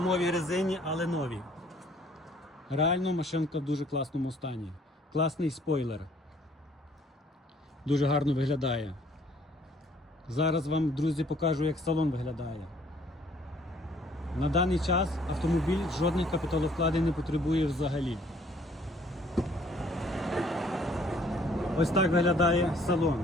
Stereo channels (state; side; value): normal; both; correlation 0.60